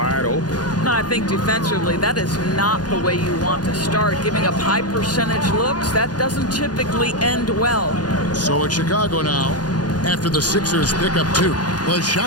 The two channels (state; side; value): late; right; 0.69 ms